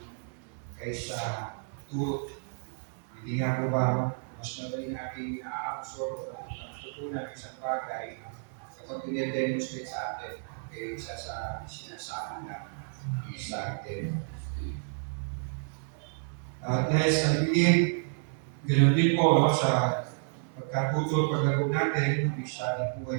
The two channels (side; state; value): left; silent; digital silence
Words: kaysa turo. Hindi nga po ba mas madaling natin na-absorb at natutunan isang bagay kapag pinidemonstrate sa atin kaysa sa sinasabi na sa atin. At I believe, ganoon din po sa pagkatuturo paglago natin ng isa ng